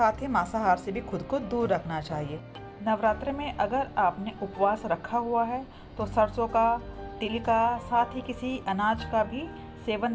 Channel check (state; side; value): identical; both; correlation 1.00